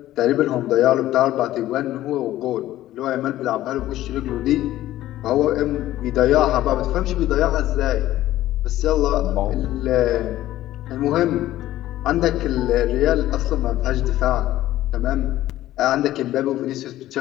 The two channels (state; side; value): quieter; right; 14.5 dB